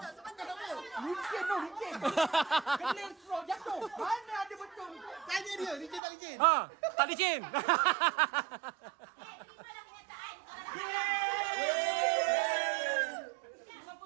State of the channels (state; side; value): drops out; left; at 6.0 s